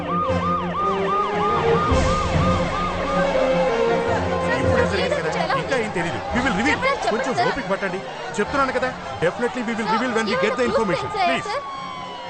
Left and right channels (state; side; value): identical; both; correlation 1.00